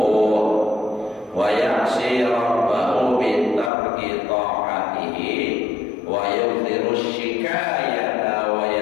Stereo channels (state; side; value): drops out; right; at 3.7 s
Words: wa ya'si rabbahu bi tarki ta'atihi wa yudhiru syikayata wa